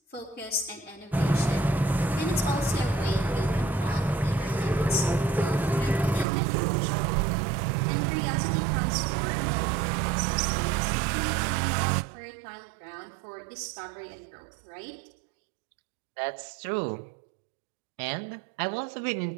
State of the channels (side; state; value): left; drops out; at 6.2 s